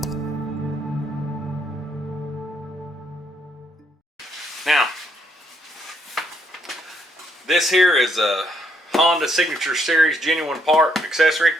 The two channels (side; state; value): both; normal; correlation 0.73